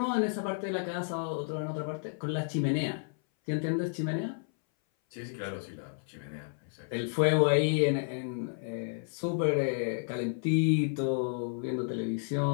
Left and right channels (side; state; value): right; silent; 57 dB below the other